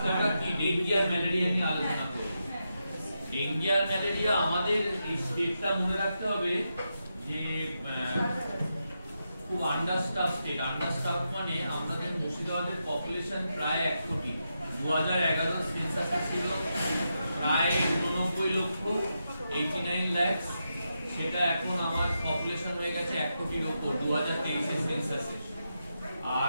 আমরা কি ডেঙ্গি আর ম্যালেরিয়া নিয়ে আলোচনা করব। ডেঙ্গি আর ম্যালেরিয়া আমাদের এই স্টেটটা মনে রাখতে হবে যে খুব আন্ডারস্টাফ স্টেট। আন্ডারস্টাফ মানে আমাদের মুর্শিদাবাদের পপুলেশন প্রায় 1 কোটি। 2011 সেন্সাসে ছিল প্রায় 89 লক্ষ 89 লাখ। সেটা এখন আমার পপুলেশন হয়ে গেছে 1 কোটির উপর 2023 এর সেন্সাসে।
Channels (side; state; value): both; inverted; correlation -0.86